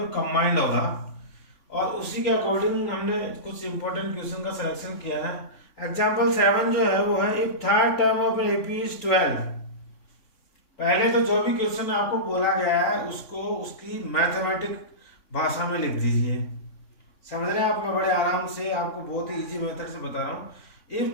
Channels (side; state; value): right; late; 3.6 ms